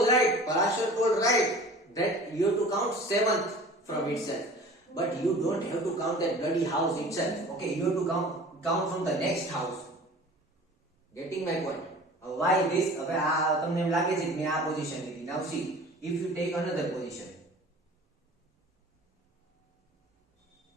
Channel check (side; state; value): both; normal; correlation 0.43